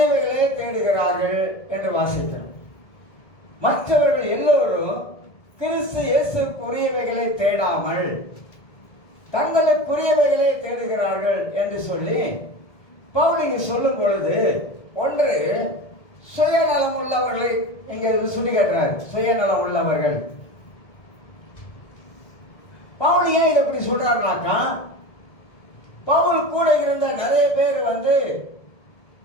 தேடுகிறார்கள் என்று வாசித்தேன். மற்றவர்கள் எல்லோரும் கிறிஸ்து இயேசுக்குரியவைகளை தேடாமல் தங்களுக்குரியவைகளே தேடுகிறார்கள் என்று சொல்லி பவுல் இங்கு சொல்லும் பொழுது, ஒன்று சுயநலம் உள்ளவர்களை இங்க சுட்டி காட்டுறார். சுயநலம் உள்ளவர்கள். பவுல் ஏன் இதை இப்படி சொல்றாருனாக்கா, பவுல் கூட இருந்த நிறைய பேர்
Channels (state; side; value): late; right; 1.7 ms